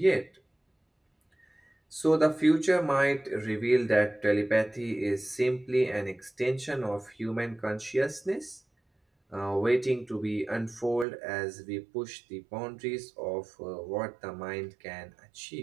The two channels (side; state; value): left; drops out; at 11.1 s